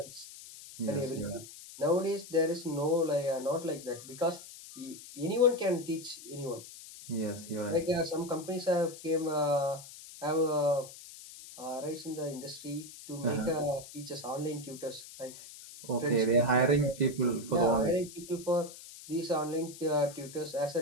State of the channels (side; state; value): left; noise; hiss, 15 dB below the sound